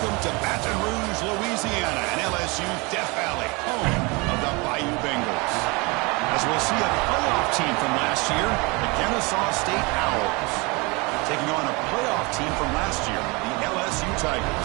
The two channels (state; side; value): quieter; left; 27.1 dB